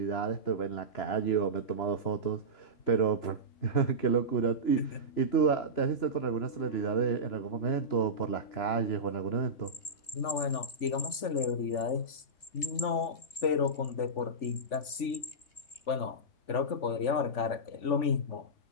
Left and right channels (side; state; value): right; late; 3.5 ms